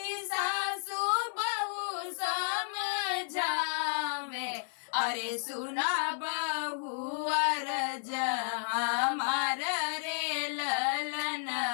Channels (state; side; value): silent; right; 55 dB below the other